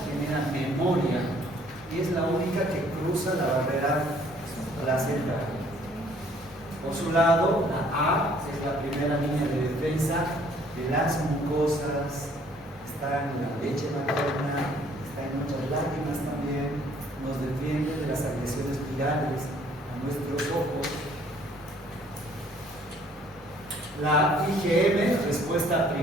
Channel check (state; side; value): normal; both; correlation 0.60